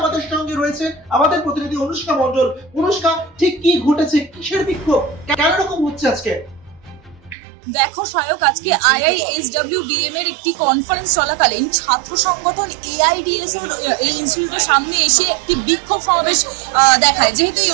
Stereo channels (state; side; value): drops out; left; at 7.4 s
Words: সঙ্গে রয়েছে আমাদের প্রতিনিধি অনুষ্কা মণ্ডল। অনুষ্কা, ঠিক কি ঘটেছে, কিসের বিক্ষোভ, কেন রকম হচ্ছে আজকে? দেখো সায়ক, আজকে IISWBM এর একটি কনফারেন্স চলাকালীন ছাত্র সংগঠন এআইডিএস এর এই ইনস্টিটিউটের সামনে এসে একটি বিক্ষোভ সমাবেশ দেখায়। যেহেতু এই